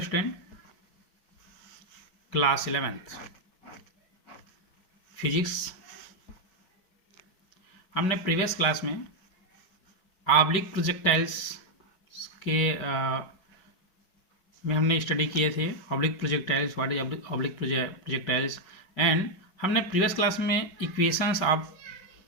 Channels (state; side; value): late; right; 5.3 ms